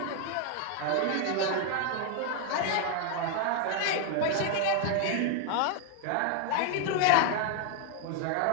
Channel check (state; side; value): different; both; correlation 0.01